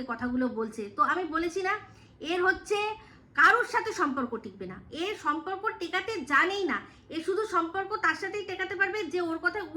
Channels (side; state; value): both; identical; correlation 1.00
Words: কথাগুলো বলছে। তো আমি বলেছি না, এর হচ্ছে কারোর সাথে সম্পর্ক টিকবে না, এর সম্পর্ক টেকাতে জানেই না। এ শুধু সম্পর্ক তার সাথেই টেকাতে পারবে যে ওর কথায়